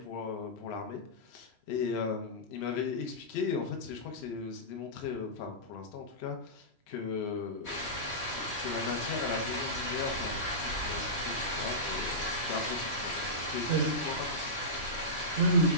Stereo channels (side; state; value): right; late; 3.0 ms